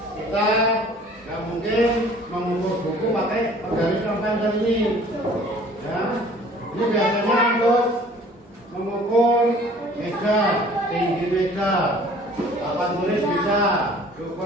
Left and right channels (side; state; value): both; normal; correlation 0.51